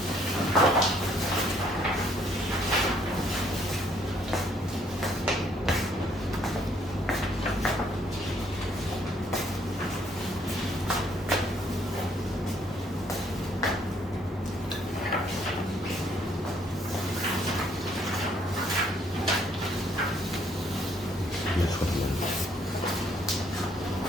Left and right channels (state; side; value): normal; both; correlation 0.66